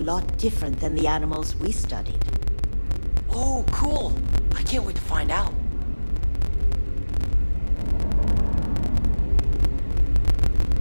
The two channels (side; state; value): both; inverted; correlation -1.00